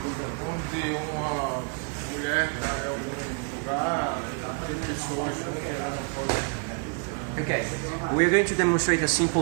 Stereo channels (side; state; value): left; quieter; 38.6 dB